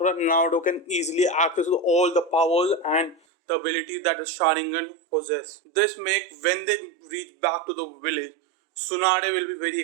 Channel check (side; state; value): left; drops out; at 3.2 s